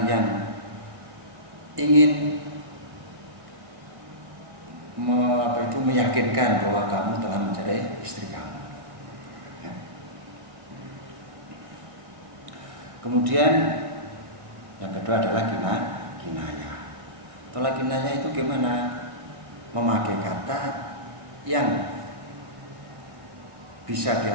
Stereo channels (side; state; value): left; late; 1.7 ms